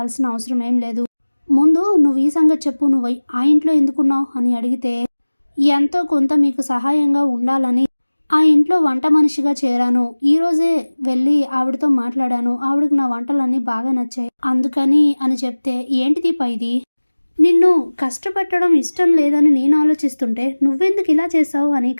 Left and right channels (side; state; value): both; inverted; correlation -1.00